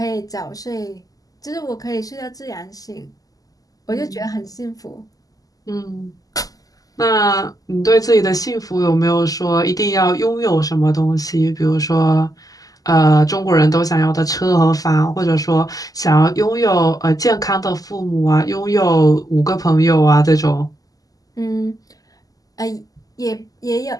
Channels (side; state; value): right; late; 0.17 ms